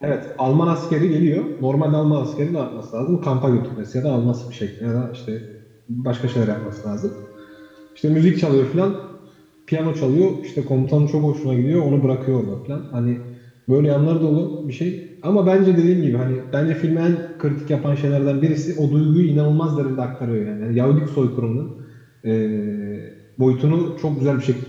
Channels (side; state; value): both; identical; correlation 1.00